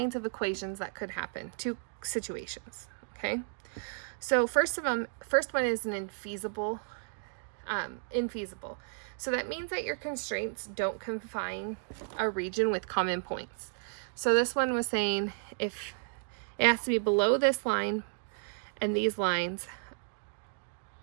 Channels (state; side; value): silent; left; digital silence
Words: of equations that could happen. 2 situations. Okay. So first one is an infeasible. So that means that your constraints don't confine a region with common points. So this one was saying if it has to be below this line and these lines.